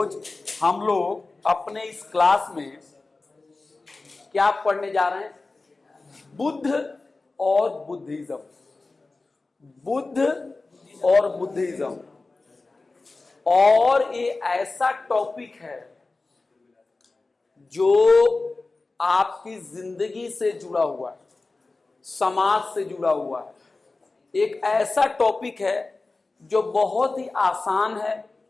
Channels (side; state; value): right; quieter; 3.5 dB